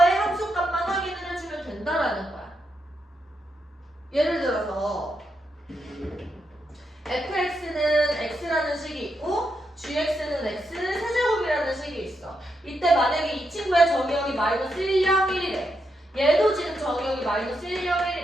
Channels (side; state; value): both; normal; correlation 0.82